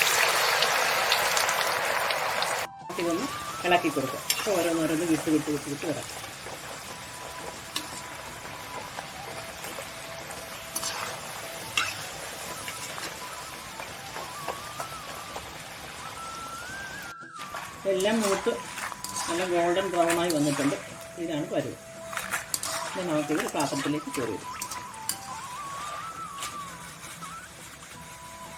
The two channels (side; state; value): both; identical; correlation 1.00